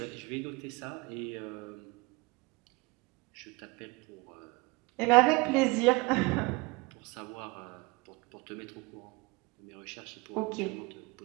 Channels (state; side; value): quieter; left; 25.5 dB